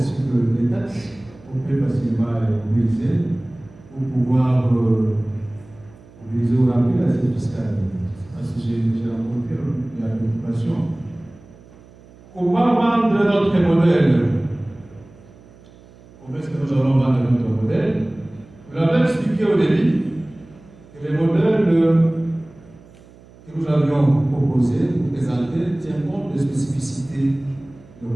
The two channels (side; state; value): right; noise; hum, 24 dB below the sound